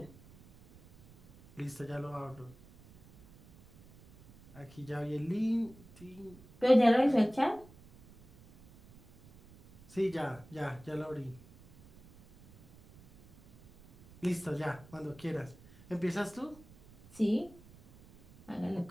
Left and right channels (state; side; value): noise; right; rumble, 23 dB below the sound